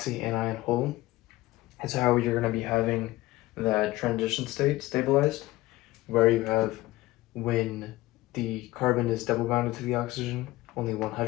hole is how you're going to be having that transition state stabilized, where you have when the carbon is double bonded to the oxygen, only one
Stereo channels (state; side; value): quieter; right; 18.3 dB